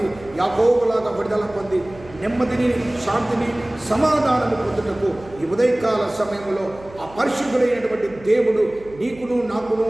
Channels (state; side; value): noise; right; hum, 21 dB below the sound